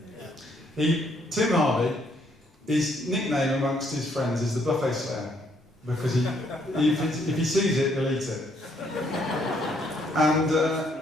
Tim Harvey, his nickname amongst his friends is the Buffet Slayer, because if he sees it, he'll eat it. And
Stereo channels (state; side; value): normal; both; correlation 0.69